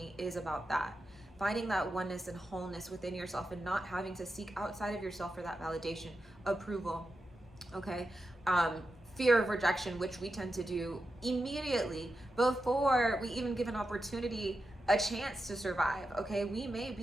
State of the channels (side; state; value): both; normal; correlation 0.89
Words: is about that. Finding that oneness and wholeness within yourself and not having to seek outside of yourself for that validation, approval, okay? Fear of rejection, which we tend to do immediately before we even give an opportunity a chance to survive, okay? We may